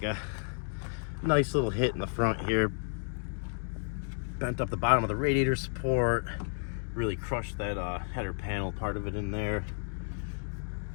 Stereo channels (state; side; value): silent; right; 56 dB below the other